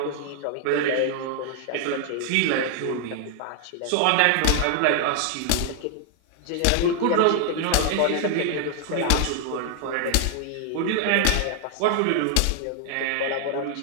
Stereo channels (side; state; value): both; different; correlation 0.00